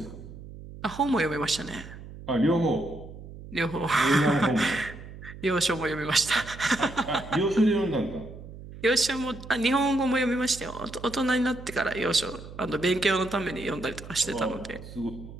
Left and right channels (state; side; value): noise; right; hum, 14 dB below the sound